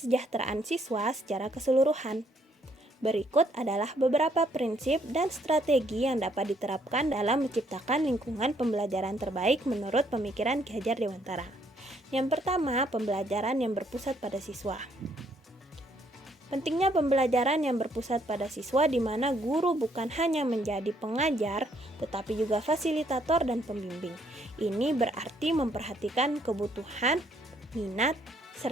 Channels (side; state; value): both; normal; correlation 0.69